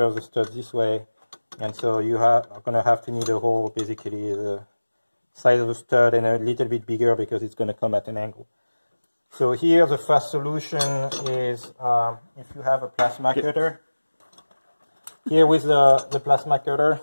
the stud this way, and so you are going to have to need a hole basically the size of the stud and a little bit bigger because it's going to come at an angle. So here the fast solution is if you have a plasma cutter. Here with the plasma cutter,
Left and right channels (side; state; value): both; inverted; correlation -1.00